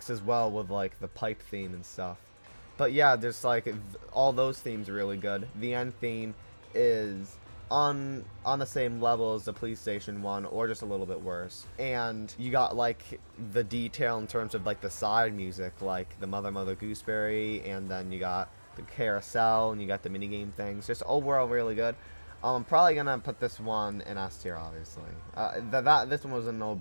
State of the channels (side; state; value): both; inverted; correlation -1.00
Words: well with like the pipe theme and stuff. But yeah, there's like all those themes are really good. The end theme is on the same level as the police station one, or just a little bit worse. And you got like the detail in terms of like the side music, like the Mother Gooseberry, and then you got the carousel, and you got the minigame things. Just overall really good. I'm probably gonna put this one in S tier, obviously. This one was a